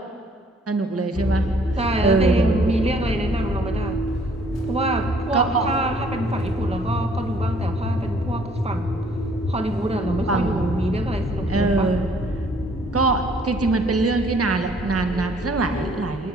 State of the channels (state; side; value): normal; both; correlation 0.61